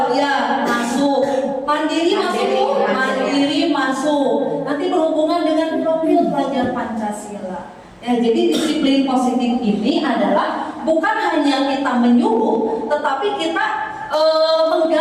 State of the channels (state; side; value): identical; both; correlation 1.00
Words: ya masuk, mandiri masuk Bu, mandiri masuk. Nanti berhubungan dengan profil pelajar Pancasila. Ya, jadi disiplin positif ini adalah bukan hanya kita menyuruh, tetapi kita